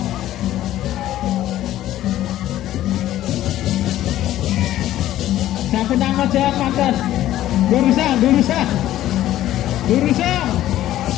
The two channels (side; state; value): right; quieter; 13.5 dB